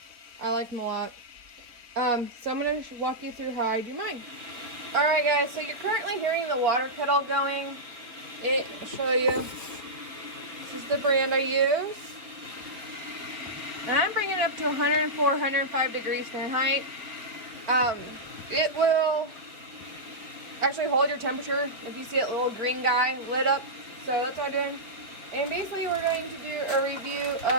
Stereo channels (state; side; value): late; left; 3.9 ms